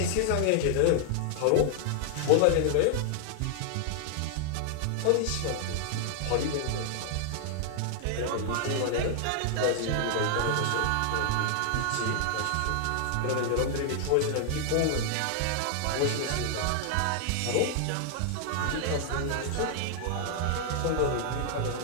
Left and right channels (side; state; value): both; different; correlation 0.00